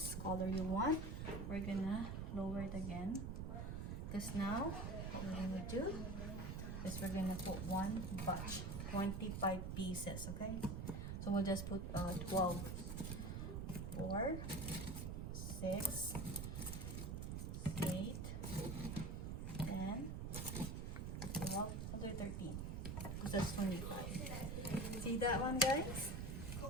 color you want. We're gonna lower it again, because now what we're gonna do is we're gonna put one batch, 25 pieces. Okay, so we'll just put 12, 4, 6, 8, 10, 12, 13, because that's 25. See that one, guys?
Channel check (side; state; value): right; noise; rumble, 3 dB below the sound